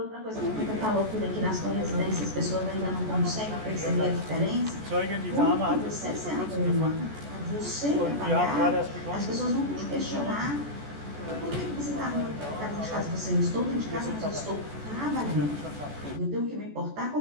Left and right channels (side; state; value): left; late; 14 ms